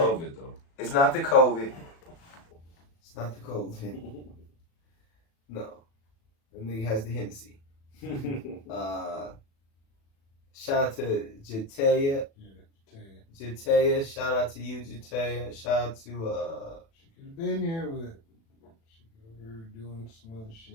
though. It's not the COVID. It's not the COVID. No. That nigga has the Hennessy. Shout out to Jataya. Yeah, Jataya. Shout out to you, Jataya. Shout out to she could have been here, but she over doing some other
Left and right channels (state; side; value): late; right; 36 ms